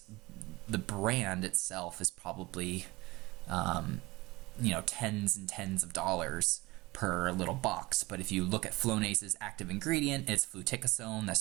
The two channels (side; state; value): left; quieter; 21.4 dB